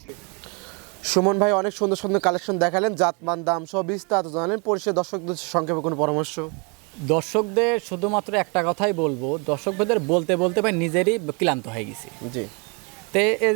সুমন ভাই অনেক সুন্দর সুন্দর কালেকশন দেখালেন, জাতমান, দাম সব বিস্তারিত জানালেন। পরিশেষে দর্শকদের সংক্ষেপে কোনো পরামর্শ? দর্শকদের শুধুমাত্র একটা কথাই বলবো, দর্শকদের বলতে বলতে ভাই নিজেরই ক্লান্ত হয়ে গেছি। জি। তে এই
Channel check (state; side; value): quieter; left; 33.5 dB